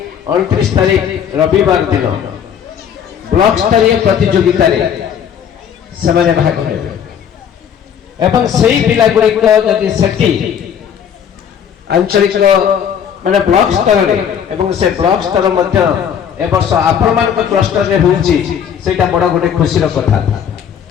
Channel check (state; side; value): quieter; right; 8.3 dB